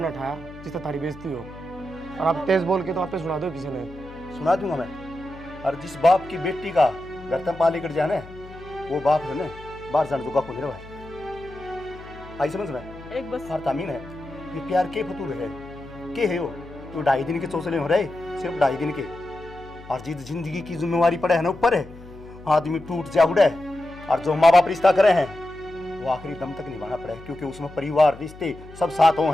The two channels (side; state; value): left; noise; hum, 18 dB below the sound